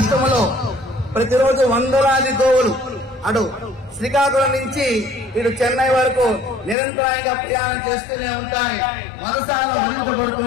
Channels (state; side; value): drops out; right; at 6.8 s